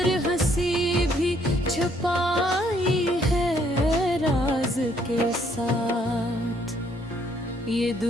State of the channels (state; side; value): normal; both; correlation 0.67